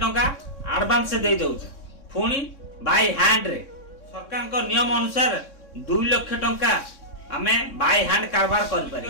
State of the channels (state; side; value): late; right; 3.6 ms